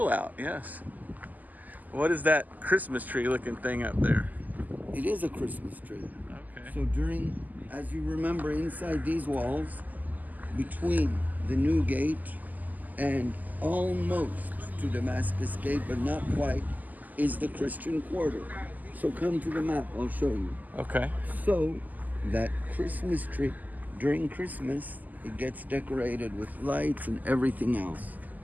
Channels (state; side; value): late; left; 0.082 ms